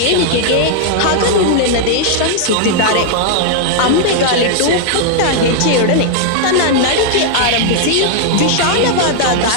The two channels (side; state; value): both; different; correlation 0.00